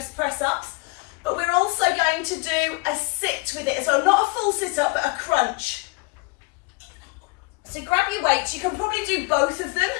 press-ups, but we're also going to do a sit with it. So not a full sit-up, but a crunch. So grab your weights. You can probably do both of them.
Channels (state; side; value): quieter; right; 27.7 dB